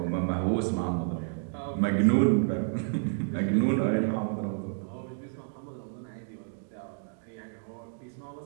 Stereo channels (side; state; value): left; silent; digital silence